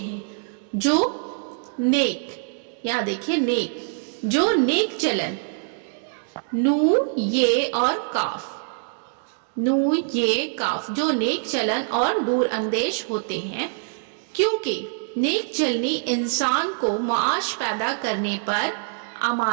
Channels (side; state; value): left; silent; 62 dB below the other